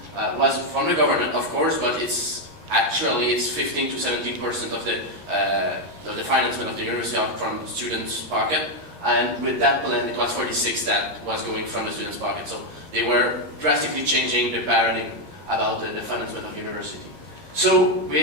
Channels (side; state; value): left; late; 13 ms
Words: was from the government, of course, but it's 15 to 17% of the financement of the university out from students' pocket. And with that plan, it was 46 that was going from the students' pocket. So they were drastically changing the paradigm about the financement of university. So